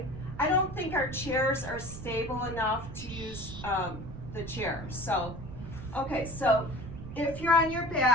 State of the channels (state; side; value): noise; right; rumble, 12 dB below the sound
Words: I don't think our chairs are stable enough to use the chair. So, okay, so if you're on your